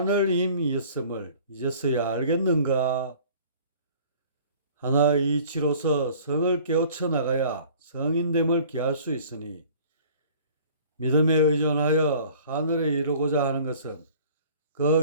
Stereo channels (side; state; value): both; inverted; correlation -0.50